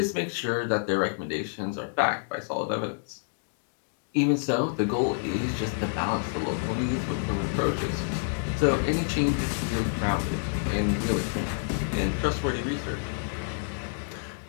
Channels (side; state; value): right; silent; digital silence